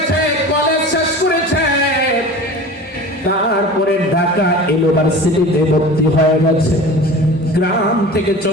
কলেজ শেষ করেছে, তারপরে ঢাকা ইউনিভার্সিটিতে ভর্তি হয়ে গেছে। গ্রাম থেকে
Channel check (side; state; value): both; normal; correlation 0.37